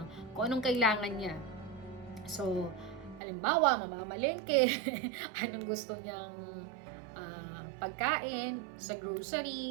kung anong kailangan niya. So, halimbawa, mamamalengke, anong gusto niyang pagkain sa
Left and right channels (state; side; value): drops out; left; at 3.2 s